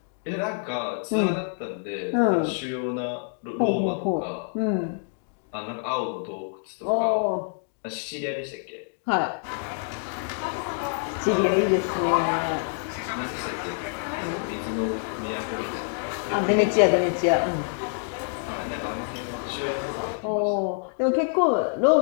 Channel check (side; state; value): right; silent; 59 dB below the other